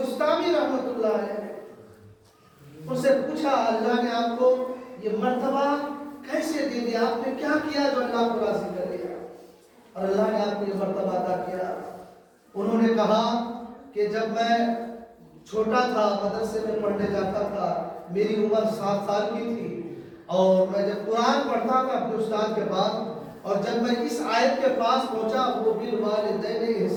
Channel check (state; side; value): identical; both; correlation 1.00